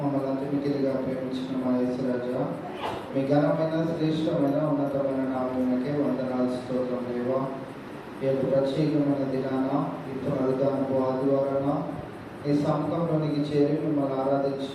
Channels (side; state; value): both; identical; correlation 1.00